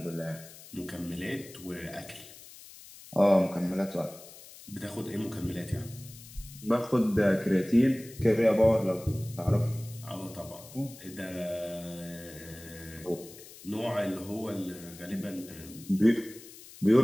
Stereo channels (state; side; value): noise; left; hiss, 18 dB below the sound